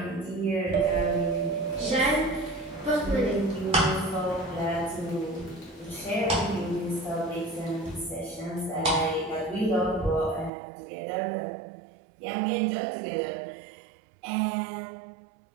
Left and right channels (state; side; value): drops out; left; at 10.5 s